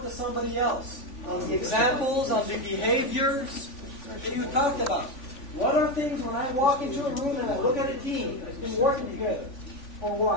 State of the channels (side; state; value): right; late; 3.5 ms